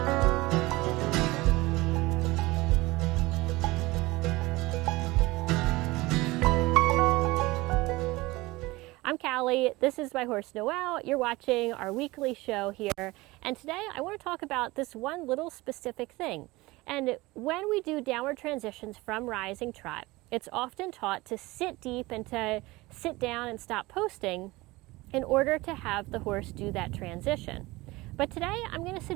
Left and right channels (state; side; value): quieter; left; 21.0 dB